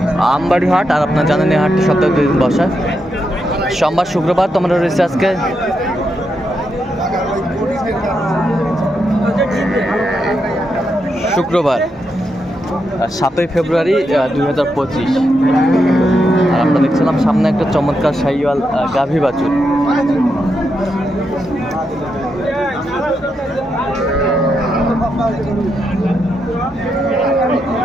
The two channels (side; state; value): both; normal; correlation 0.83